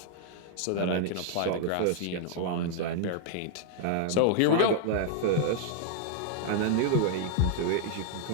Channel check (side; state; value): both; different; correlation 0.00